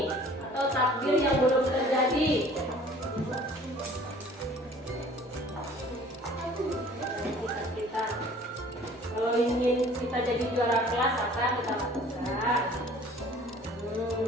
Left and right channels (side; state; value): both; normal; correlation 0.51